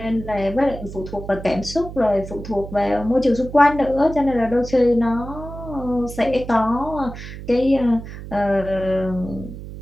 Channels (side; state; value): right; noise; hum, 11 dB below the sound